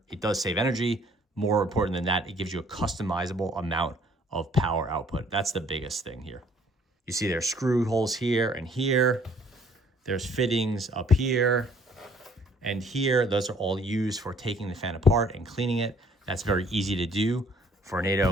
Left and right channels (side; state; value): both; normal; correlation 0.59